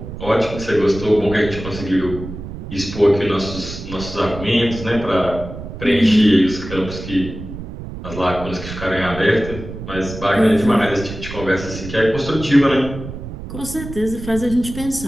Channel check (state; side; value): noise; right; rumble, 10 dB below the sound